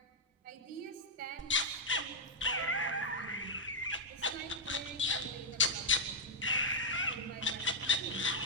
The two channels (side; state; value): both; normal; correlation -0.03